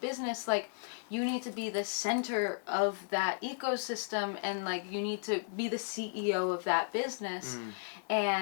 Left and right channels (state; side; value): silent; right; digital silence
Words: like, you need to be the center of that ecosystem, and, like, you need to be the CEO of that business,